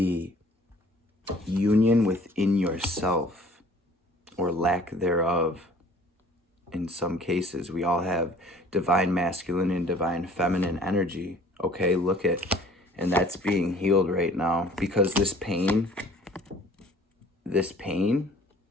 union within yourself, or lack thereof. In some cases, we all have divine masculine and divine feminine energy. Okay, look at, and that's being healed right now, because this pain,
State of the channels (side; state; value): both; normal; correlation 0.52